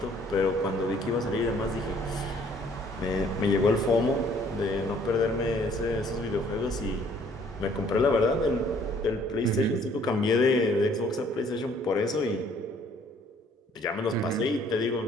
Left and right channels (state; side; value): normal; both; correlation 0.60